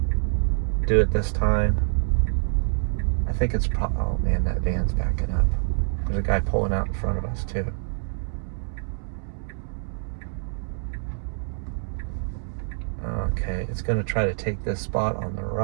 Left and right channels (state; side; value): silent; left; 61 dB below the other